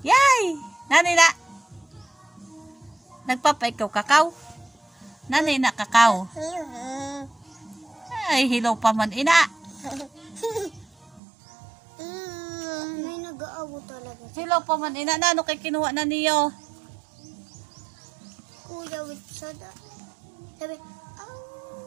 Yay! Nanay na. Nagpapay ikaw kakao. Nanay na kakao. Ay, hilaw pa man ina. May nag-aaw talaga. Hilaw pa man ina. Nano kay kinuha na niyo? Kuya with soda. Sabi,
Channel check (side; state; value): left; drops out; at 11.2 s